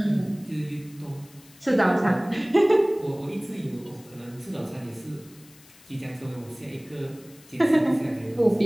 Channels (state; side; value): noise; left; hiss, 25 dB below the sound